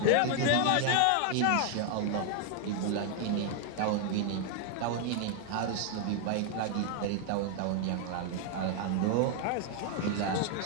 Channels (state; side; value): different; both; correlation 0.00